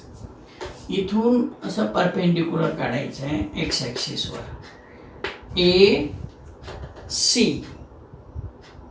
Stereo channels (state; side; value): identical; both; correlation 1.00